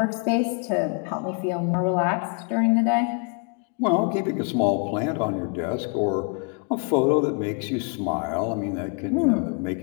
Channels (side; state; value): right; quieter; 37.6 dB